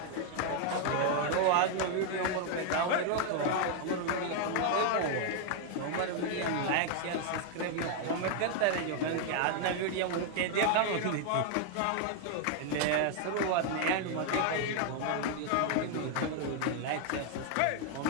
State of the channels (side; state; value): both; different; correlation 0.00